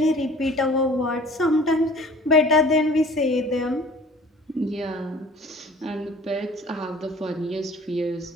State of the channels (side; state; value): both; normal; correlation 0.48